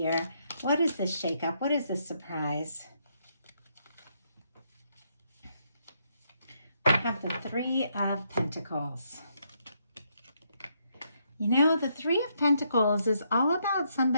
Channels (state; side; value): inverted; both; correlation -0.76